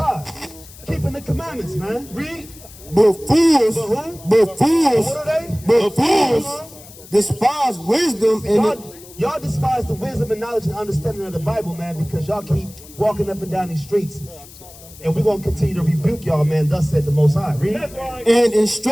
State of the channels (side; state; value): left; noise; hiss, 20 dB below the sound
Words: Keeping the commandments, man. Read. But fools, What are they? but fools despise wisdom and Y'all despise the wisdom and knowledge and understanding of the Bible, man, because y'all keep walking up and down these streets. And we're going to continue to rebuke y'all, man. Thus said the Most High. Read. and